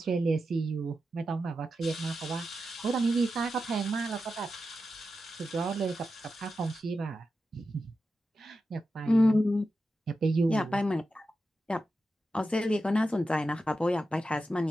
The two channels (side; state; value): both; normal; correlation 0.90